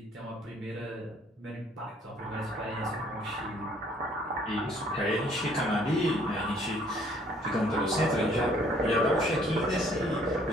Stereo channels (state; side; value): normal; both; correlation 0.60